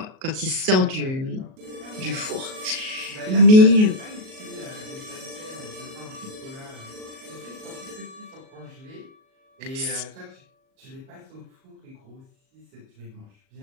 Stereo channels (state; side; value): late; left; 38 ms